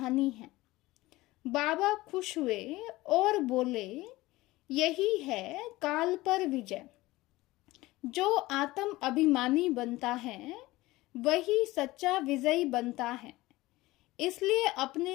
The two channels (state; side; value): quieter; right; 19.0 dB